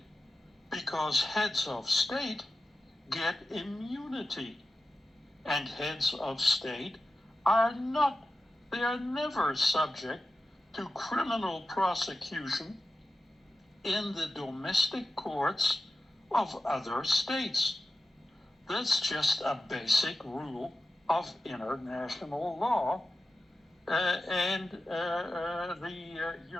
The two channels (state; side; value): normal; both; correlation 0.93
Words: because heads of state get immunity, and heads of state are never subject to criminal prosecution in the domestic courts of other states. That's just a basic rule of international law, and the